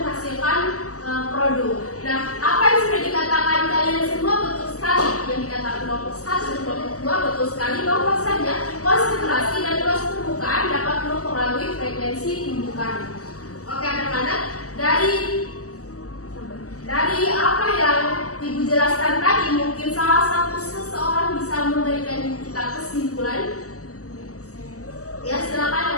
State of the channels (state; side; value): late; right; 0.66 ms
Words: produk. Nah, apa yang sudah dikatakan kalian semua betul sekali. Yang dikatakan kelompok 1 dan kelompok 2 betul sekali bahwasanya konsentrasi dan luas permukaan dapat mempengaruhi frekuensi tumbukan. Oke anak-anak, dari apa yang Ibu jelaskan tadi, mungkin salah satu seseorang bisa memberikan kita kesimpulan. Ya,